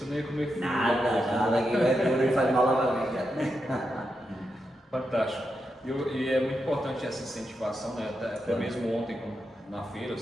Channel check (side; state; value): both; normal; correlation 0.86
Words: não ia comer frio. Nada, que vai duro e faz mal à barriga. Fantástico. E é muito importante essa incentivação, né? Até mesmo ontem na feira